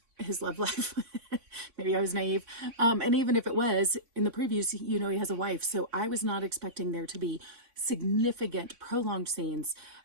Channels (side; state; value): left; late; 3.6 ms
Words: his love life. Maybe I was naive. And even if it was, in the previews, he has a wife. So I was not expecting there to be significant, prolonged scenes